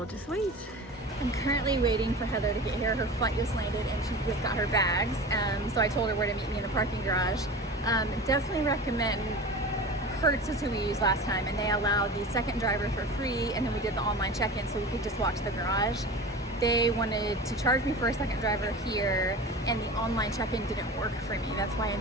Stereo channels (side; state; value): both; normal; correlation 0.33